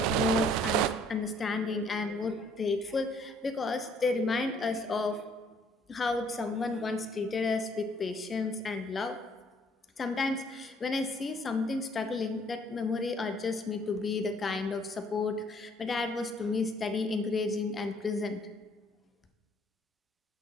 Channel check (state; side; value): normal; both; correlation 0.62